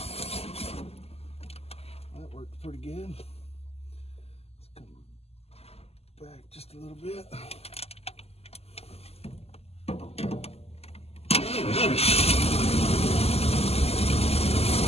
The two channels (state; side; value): late; right; 0.29 ms